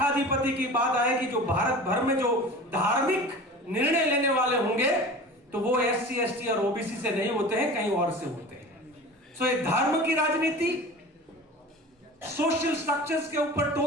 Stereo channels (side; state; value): both; normal; correlation 0.37